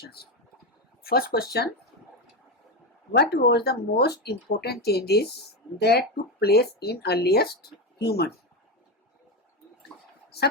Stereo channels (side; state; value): both; normal; correlation 0.13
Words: First question, what was the most important changes that took place in earliest human?